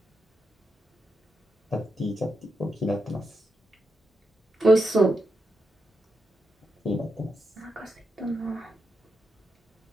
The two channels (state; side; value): normal; both; correlation 0.85